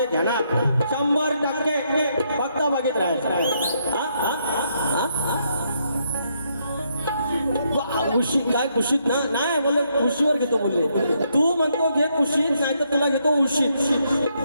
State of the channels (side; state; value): both; inverted; correlation -0.76